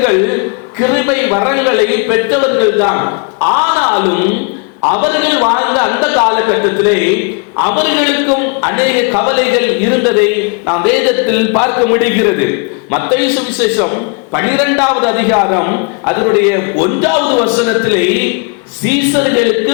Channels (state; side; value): quieter; right; 33.8 dB